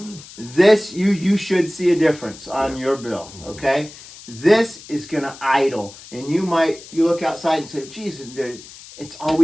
This you should see a difference on your bill. Okay. This is gonna idle, and you look outside and say, "Geez, it's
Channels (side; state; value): left; noise; hiss, 18 dB below the sound